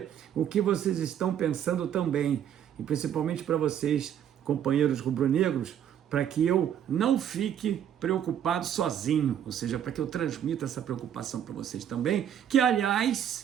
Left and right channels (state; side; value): quieter; left; 9.6 dB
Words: o que vocês estão pensando também, e principalmente para vocês, companheiros rubro-negros, para que eu não fique preocupado sozinho, ou seja, para que eu transmita essa preocupação para vocês também, que,